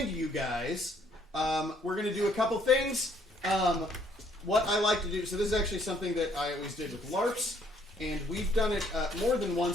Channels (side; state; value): both; normal; correlation 0.65